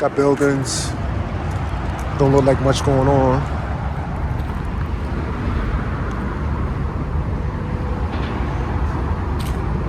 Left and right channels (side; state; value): both; identical; correlation 1.00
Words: buildings, don't look like much going on.